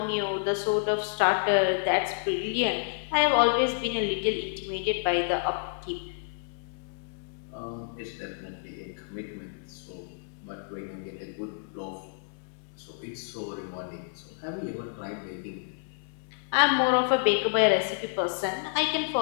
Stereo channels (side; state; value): right; silent; digital silence